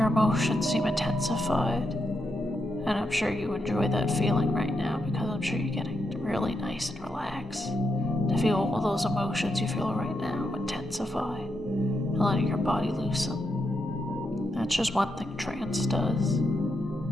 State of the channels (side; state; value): both; normal; correlation 0.83